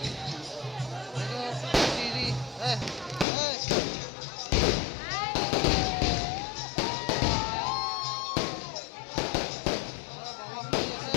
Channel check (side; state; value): right; drops out; at 3.2 s